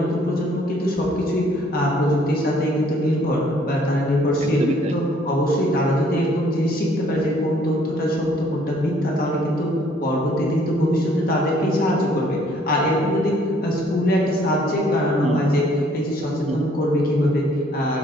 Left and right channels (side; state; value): both; normal; correlation 0.62